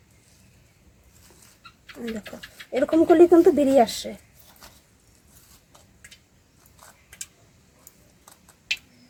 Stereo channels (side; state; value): both; identical; correlation 1.00